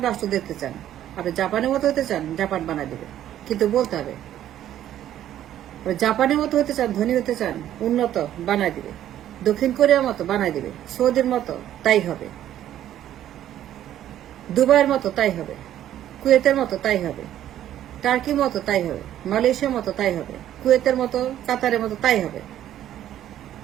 রাষ্ট্র দেখতে চান। আপনি জাপানের মতো হতে চান, জাপান বানাই দিবে, কিন্তু বলতে হবে। জাপানের মতো হতে চান, ধনী হতে চান, উন্নত, বানাই দিবে। দক্ষিণ কোরিয়ার মতো বানাই দিবে, সৌদির মতো তাই হবে, দুবাইয়ের মতো তাই হবে, কুয়েতের মতো তাই হবে, টার্কির মতো তাই হবে, মালয়েশিয়ার মতো তাই হবে, কুয়েতের মতো, কাতারের মতো তাই হবে।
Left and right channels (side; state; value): left; quieter; 11.8 dB